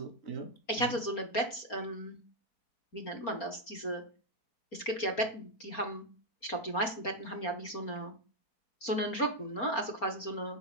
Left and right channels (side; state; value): right; late; 4.3 ms